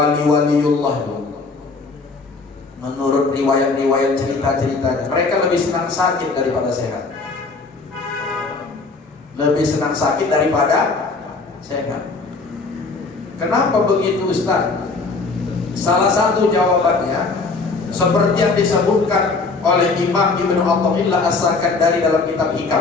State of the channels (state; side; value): quieter; right; 4.0 dB